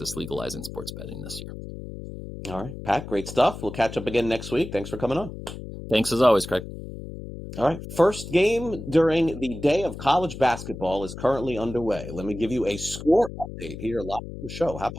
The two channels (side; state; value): left; noise; hum, 10 dB below the sound